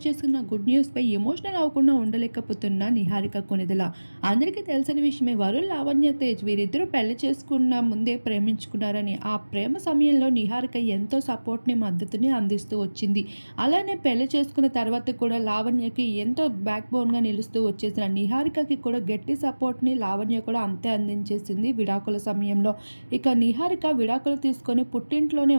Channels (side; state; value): both; inverted; correlation -1.00